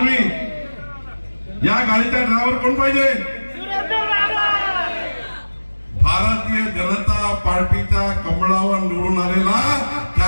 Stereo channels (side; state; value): both; inverted; correlation -1.00